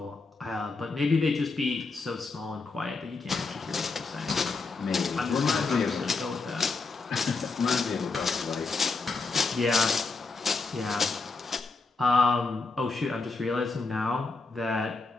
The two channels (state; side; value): quieter; right; 4.0 dB